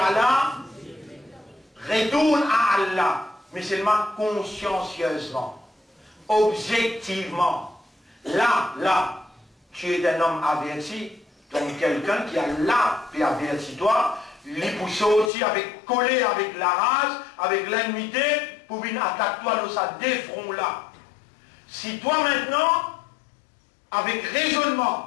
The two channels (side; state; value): right; drops out; at 15.3 s